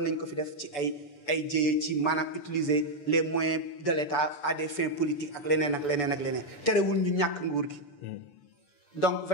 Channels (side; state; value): right; late; 6.9 ms